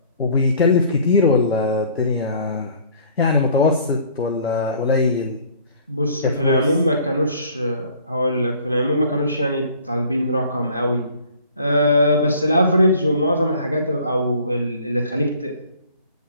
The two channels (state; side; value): inverted; both; correlation -0.53